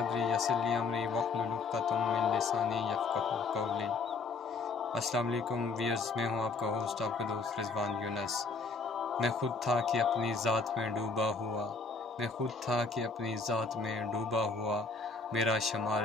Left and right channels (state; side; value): quieter; right; 4.2 dB